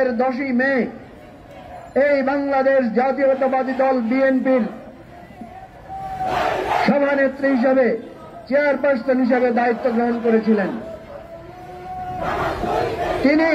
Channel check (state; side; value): identical; both; correlation 1.00